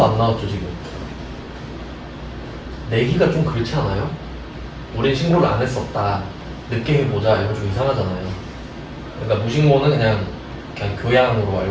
안 나왔죠 지금. 내기가 좀 그렇지 않아요? 우린 신고를 안 했었다, 늦게 해보자, 이거 좀 이상하잖아요. 그러니까 무신고는 그냥 교양으로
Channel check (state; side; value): identical; both; correlation 1.00